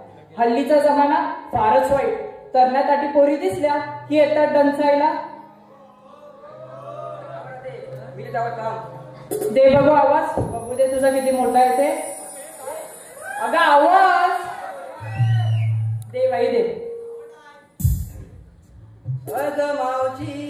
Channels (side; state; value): both; identical; correlation 1.00